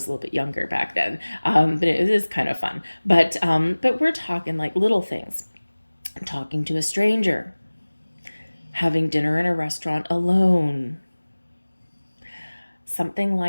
a little bit younger back then. But it is kind of fun. But we're talking like little things. Talking to a stranger. Having dinner in a restaurant alone, something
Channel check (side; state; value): both; inverted; correlation -1.00